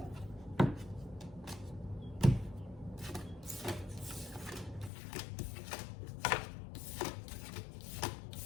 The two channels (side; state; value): right; drops out; at 4.9 s